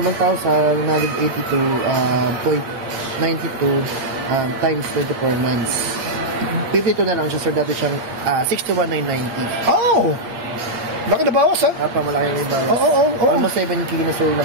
yung 1,182.92 times 24 months. 52 na lang siya sir, dati siyang 61,990. Oh! Laki na bawas, ha? Malaki yung bawas. Oo. Almost 7K na sir na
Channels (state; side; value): late; left; 8.5 ms